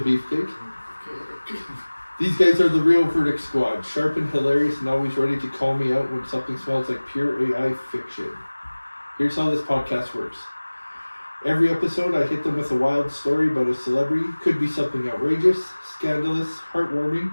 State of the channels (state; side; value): inverted; both; correlation -1.00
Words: Beefcake. These guys are the real Verdict Squad, sharp and hilarious and always ready to call me out when something smells like pure AI fiction. Here's how this podcast works. Every episode I hit them with a wild story about a celebrity. Could be something outrageous, scandalous, heartwarming,